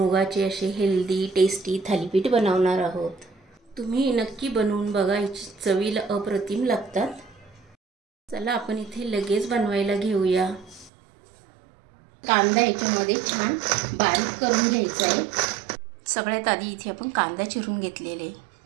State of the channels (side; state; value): left; drops out; at 10.9 s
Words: असे हेल्दी टेस्टी थालीपीठ बनवणार आहोत। तुम्ही नक्की बनवून बघा, चवीला अप्रतिम लागतात। चला आपण इथे लगेच बनवायला घेऊया। कांदा याच्यामध्ये छान बारीक करून घ्यायचा आहे। सगळ्यात आधी इथे आपण कांदा चिरून घेतलेले,